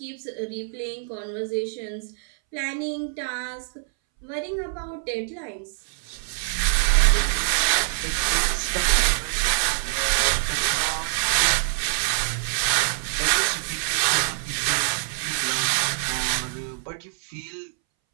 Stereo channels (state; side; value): silent; left; 62 dB below the other